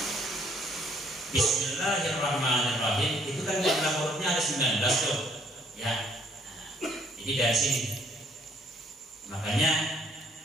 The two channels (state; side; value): normal; both; correlation 0.65